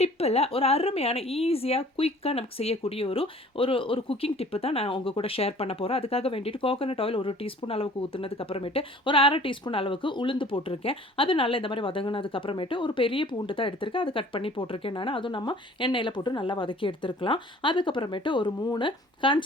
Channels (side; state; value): both; normal; correlation 0.51